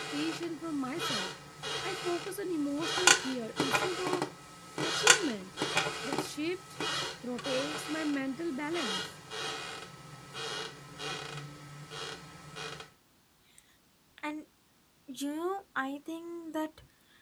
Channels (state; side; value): identical; both; correlation 1.00